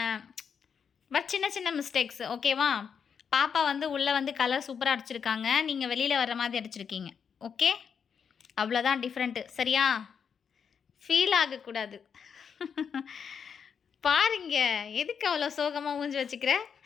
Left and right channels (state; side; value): quieter; right; 6.9 dB